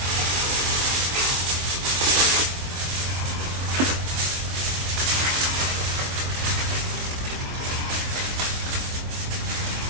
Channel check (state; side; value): late; left; 23 ms